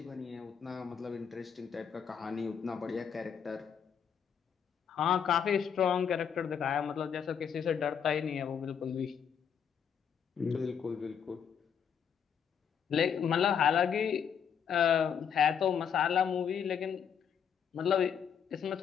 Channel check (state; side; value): quieter; right; 7.7 dB